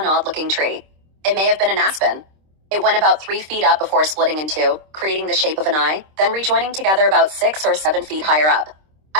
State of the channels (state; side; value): late; left; 26 ms